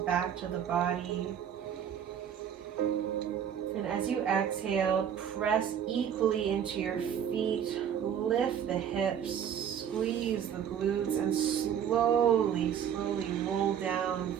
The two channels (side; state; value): left; quieter; 8.8 dB